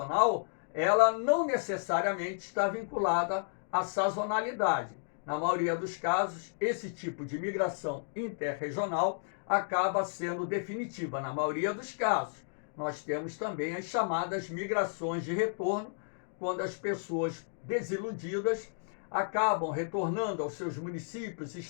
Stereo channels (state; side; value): silent; right; digital silence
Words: ela não necessariamente está vinculada à sazonalidade. Na maioria dos casos, esse tipo de migração interregional acaba sendo definitiva. Na maioria dos casos, nós temos também as chamadas migrações de retorno, quando as pessoas desiludidas acabam retornando aos seus municípios,